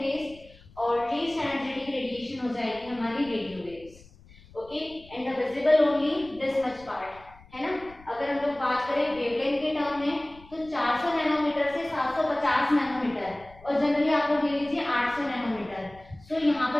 रेज, और लीस्ट एनर्जेटिक रेडिएशन हो जाएगी हमारी radio waves. Okay, and the visible only this much part है ना. अगर हम लोग बात करें वेवलेंथ के टर्म में तो 400 नैनोमीटर से 750 नैनोमीटर, और जनरली आप लोग ले लीजिए 800 नैनोमीटर. सो यहाँ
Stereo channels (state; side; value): noise; left; rumble, 23 dB below the sound